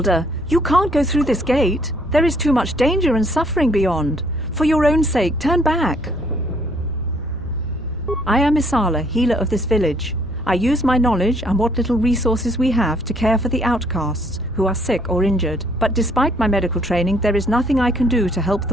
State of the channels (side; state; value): both; normal; correlation 0.65